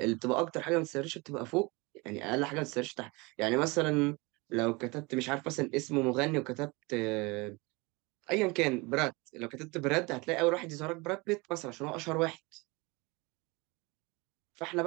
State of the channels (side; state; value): left; quieter; 25.8 dB